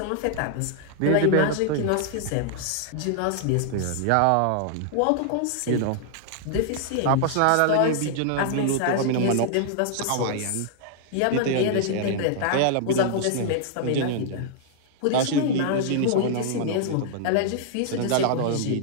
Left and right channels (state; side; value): different; both; correlation -0.01